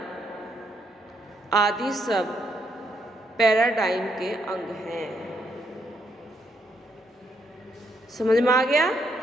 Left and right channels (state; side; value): normal; both; correlation 0.75